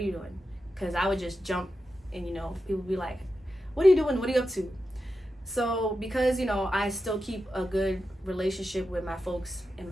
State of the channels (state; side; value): normal; both; correlation 0.90